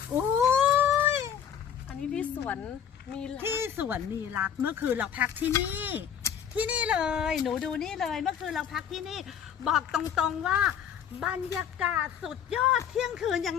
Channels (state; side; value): quieter; right; 8.7 dB